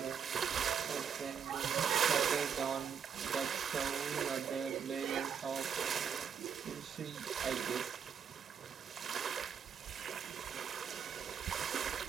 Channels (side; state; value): left; quieter; 7.4 dB